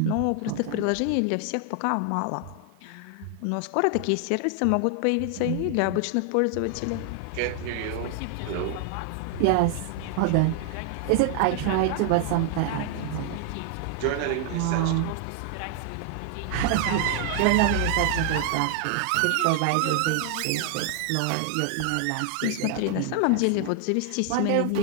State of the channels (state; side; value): different; both; correlation 0.00